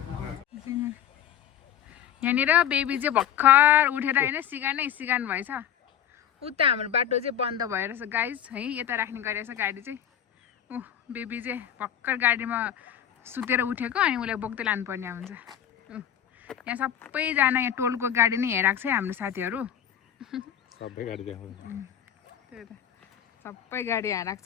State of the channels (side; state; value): right; quieter; 10.0 dB